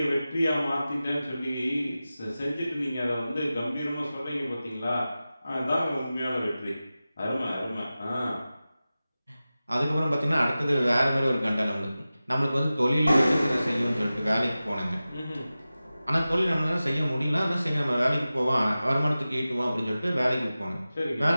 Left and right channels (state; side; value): inverted; both; correlation -0.95